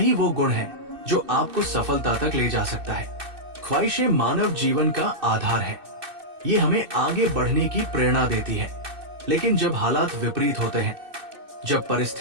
वो गुण है जो आपको सफलता तक ले जा सकता है। ख्वाहिशें मानव जीवन का आधार है। ये हमें आगे बढ़ने की प्रेरणा देती है। लेकिन जब हालात विपरीत होते हैं, जब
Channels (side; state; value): left; late; 2.6 ms